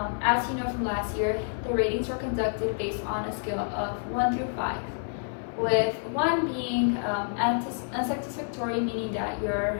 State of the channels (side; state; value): right; silent; 59 dB below the other